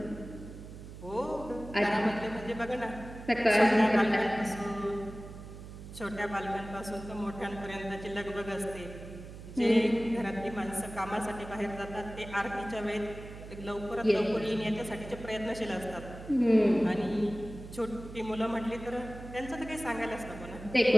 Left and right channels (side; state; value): right; noise; hum, 13 dB below the sound